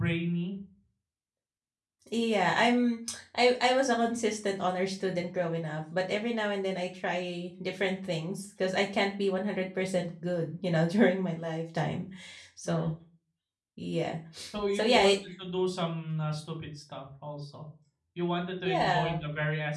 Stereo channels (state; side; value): identical; both; correlation 1.00